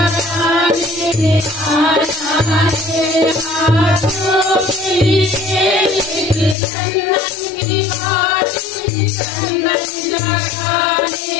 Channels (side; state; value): right; drops out; at 6.6 s